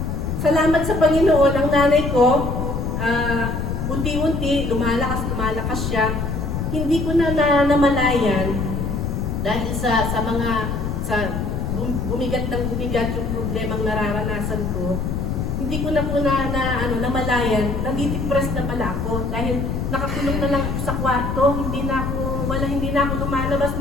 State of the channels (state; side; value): noise; left; rumble, 2 dB below the sound